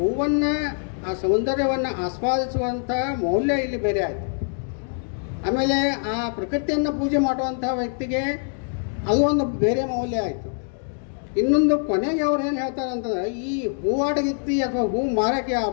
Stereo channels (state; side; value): silent; right; 63 dB below the other